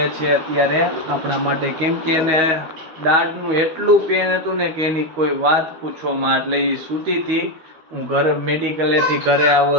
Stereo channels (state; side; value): late; left; 13 ms